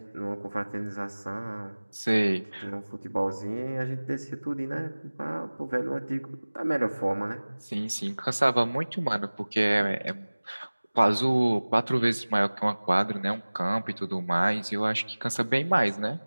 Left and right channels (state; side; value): inverted; both; correlation -1.00